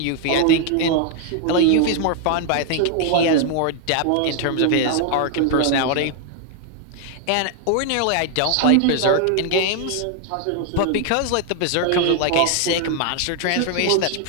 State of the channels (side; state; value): both; different; correlation 0.00